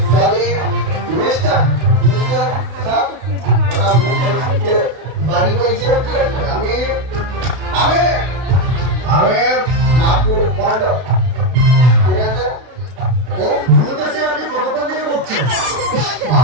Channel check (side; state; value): left; late; 32 ms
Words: সরি মিস্টার স্যার বাড়ি কইছে আমি আমি আমি মাকুর বন্ধ। ঠিক আছে বলতেছে আপনি কতক্ষণ থেকে বলছেন?